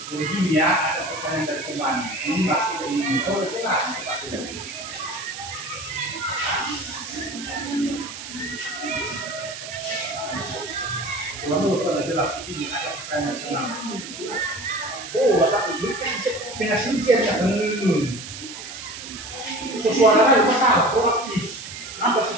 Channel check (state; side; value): noise; right; hiss, 10 dB below the sound